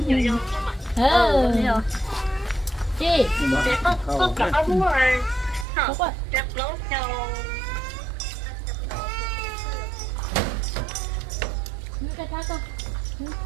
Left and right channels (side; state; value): left; drops out; at 5.7 s